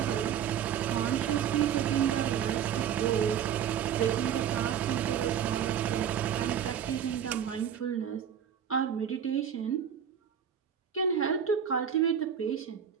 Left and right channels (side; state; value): left; quieter; 8.7 dB